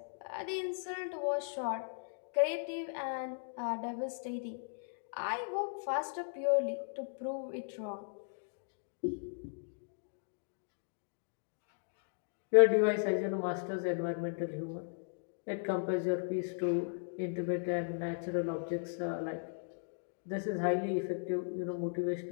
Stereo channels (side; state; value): right; silent; digital silence